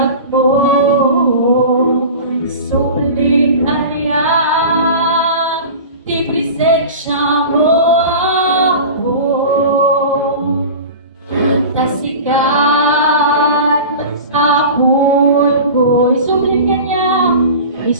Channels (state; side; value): inverted; both; correlation -0.35